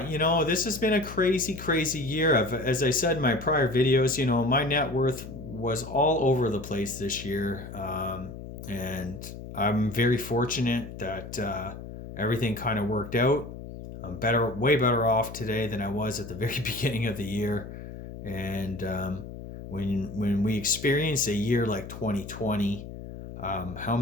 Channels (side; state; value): left; noise; hum, 11 dB below the sound